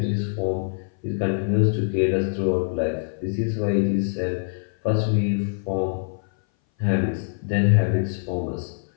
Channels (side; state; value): right; silent; 59 dB below the other